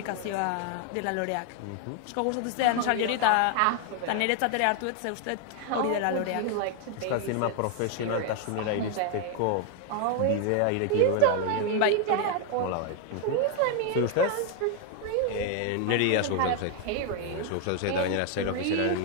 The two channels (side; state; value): both; different; correlation 0.00